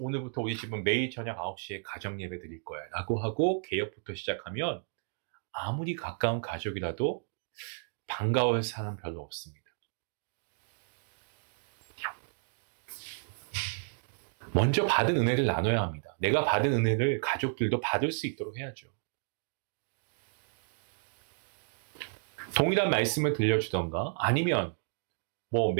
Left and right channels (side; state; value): left; silent; digital silence